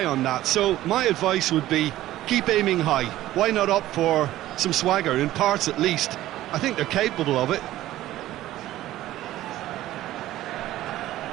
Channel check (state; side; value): quieter; left; 14.8 dB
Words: on that. So my advice would be, keep aiming high. Why not opt for some swagger, in parts at least? I think they're capable of it.